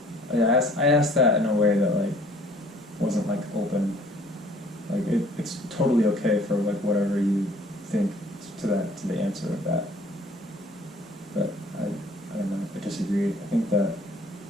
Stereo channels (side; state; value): both; normal; correlation 0.55